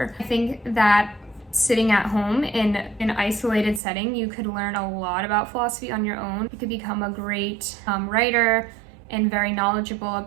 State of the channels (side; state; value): left; drops out; at 3.8 s